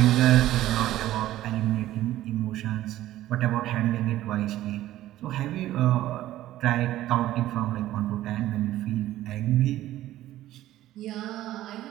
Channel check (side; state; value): left; quieter; 14.3 dB